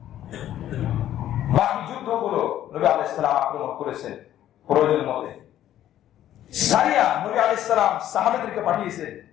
বাকি যুদ্ধগুলো নবী আলাইহিস সালাম আক্রমণ করেছেন প্রয়োজন মতে। সারিয়া নবী আলাইহিস সালাম সাহাবাদেরকে পাঠিয়েছেন।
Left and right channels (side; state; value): right; quieter; 12.1 dB